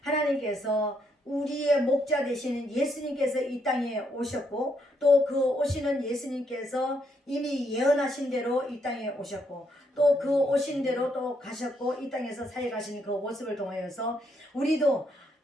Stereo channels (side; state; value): both; normal; correlation 0.75